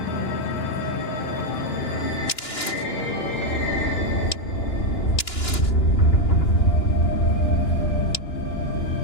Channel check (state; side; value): late; right; 2.9 ms